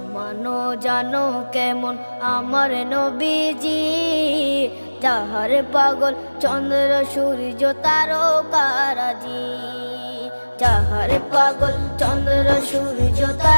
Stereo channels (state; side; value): inverted; both; correlation -1.00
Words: মানো জানো কেমন আমার নবীজি, যাহার পাগল চন্দ্র সূর্য তারকারাজি, যাহার পাগল চন্দ্র সূর্য